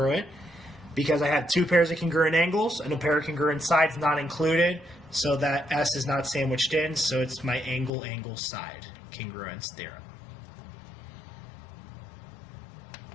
because I have two pairs of congruent angles and a pair of congruent sides not included. So that S is not sandwiched in, so it's my angle side congruence theorem.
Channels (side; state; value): right; drops out; at 7.9 s